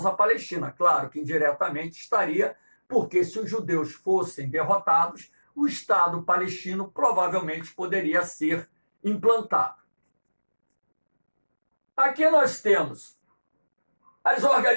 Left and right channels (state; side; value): inverted; both; correlation -1.00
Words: palestina. Claro que indiretamente estaria, porque se os judeus fossem derrotados, o Estado palestino provavelmente poderia ser implantado. Aqui nós temos as